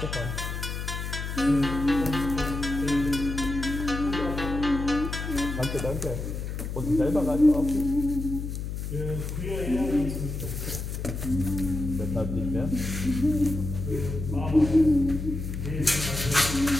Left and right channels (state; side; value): noise; left; hum, 5 dB below the sound